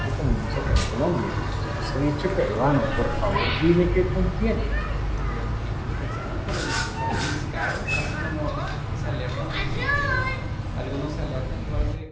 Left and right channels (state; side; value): identical; both; correlation 1.00